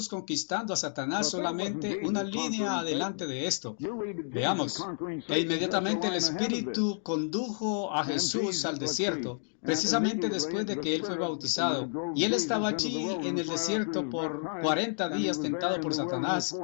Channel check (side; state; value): right; silent; digital silence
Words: conquistando a Satanás solamente una línea adelante de esto. Veamos. E inmediatamente el Espíritu condujo a Jesús al desierto, precisamente después de que él fue bautizado. Y él estaba allí en el desierto por 40 días tentado por Satanás